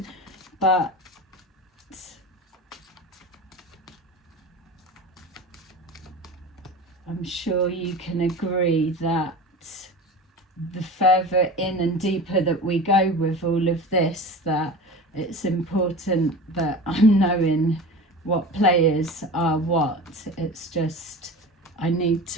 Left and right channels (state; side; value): normal; both; correlation 0.33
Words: but I'm sure you can agree that the further in and deeper that we go with all of this, that it's important that I'm knowing what players are what. It's just, I need